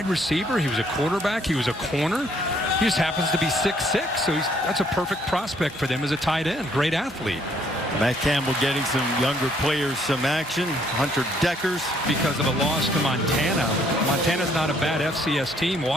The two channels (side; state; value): both; normal; correlation 0.66